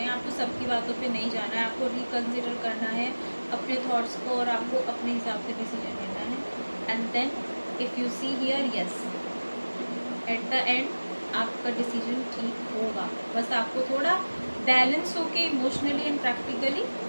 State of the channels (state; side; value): inverted; both; correlation -1.00